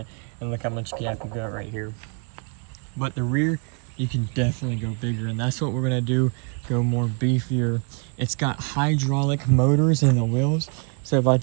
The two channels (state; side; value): quieter; left; 37.0 dB